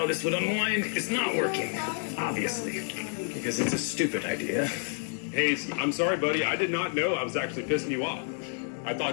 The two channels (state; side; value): silent; right; 58 dB below the other